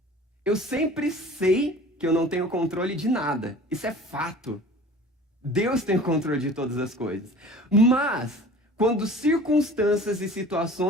Eu sempre sei que eu não tenho controle de nada. Isso é fato. Deus tem o controle de todas as coisas. Mas, quando circunstâncias e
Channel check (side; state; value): both; normal; correlation 0.43